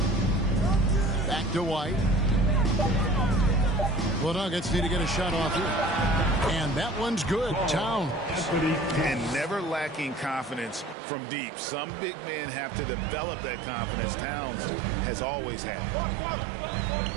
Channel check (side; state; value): left; drops out; at 11.0 s